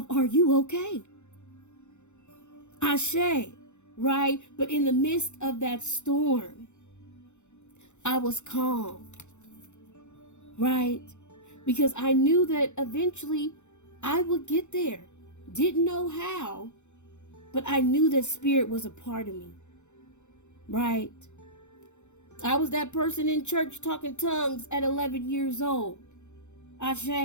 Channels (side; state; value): right; late; 0.83 ms